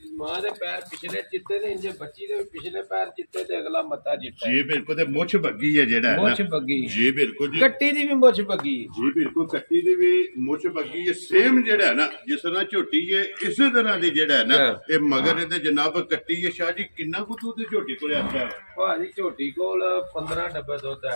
ਮਾਂ ਦੇ ਪੈਰ ਪਿਛਲੇ ਚਿੱਟੇ ਨੇ ਇੰਜ ਬੱਚੀ ਦੇ ਪਿਛਲੇ ਪੈਰ ਚਿੱਟੇ ਤੇ ਅਗਲਾ ਮੱਥਾ ਚਿੱਟਾ ਜੀ ਬਿਲਕੁਲ ਤੇ ਮੁੱਛ ਬੱਗੀ ਹੈ ਜਿਹੜਾ ਹੈ ਮੁੱਛ ਬੱਗੀ ਜੀ ਬਿਲਕੁਲ ਜੀ ਕੱਟੀ ਦੀ ਵੀ ਮੁੱਛ ਬੱਗੀ ਜੀ ਬਿਲਕੁਲ ਕੱਟੀ ਦੀ ਵੀ ਮੁੱਛ ਬੱਗੀ ਹੈ ਸੇਮ ਜਿਹੜਾ ਹੈ ਨਾ ਜਿਸ ਤਰ੍ਹਾਂ ਝੋਟੀ ਹੈ ਇਸੇ ਤਰ੍ਹਾਂ ਦੀ ਜਿਹੜਾ ਹੈ ਨਾ ਇਹ ਮਗਰ ਇਹਦੇ ਜਨਾਬ ਕੱਟੀ ਹੈ। ਸ਼ਾਹ ਜੀ ਕਿੰਨਾ ਕੁ ਦੁੱਧ ਝੋਟੀ ਕੋਲ ਆਇਆ ਭਾਜੀ ਝੋਟੀ ਕੋਲ 15 ਡੱਬੇ ਦੁੱਧ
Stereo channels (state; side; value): inverted; both; correlation -1.00